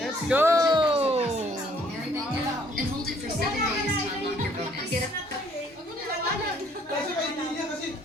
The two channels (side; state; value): both; normal; correlation 0.62